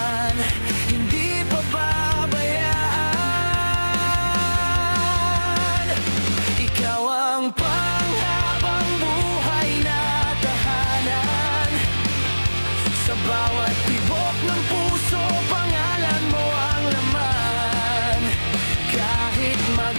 hindi pababayaan. Ikaw ang panghabang buhay na tahanan. Sa bawat tibok ng puso, pangalan mo ang laman. Kahit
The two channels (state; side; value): inverted; both; correlation -1.00